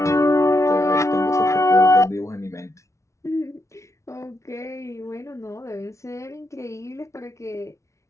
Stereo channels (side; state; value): right; late; 0.14 ms